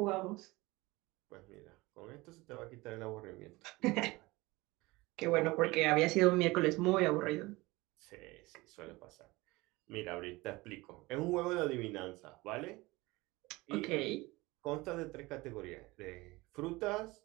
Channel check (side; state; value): left; quieter; 21.7 dB